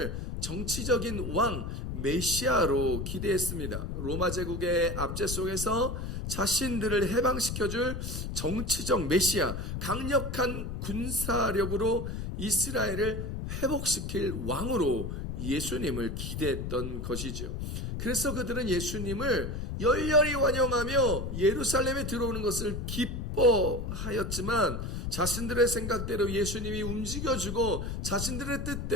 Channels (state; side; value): noise; left; rumble, 4 dB below the sound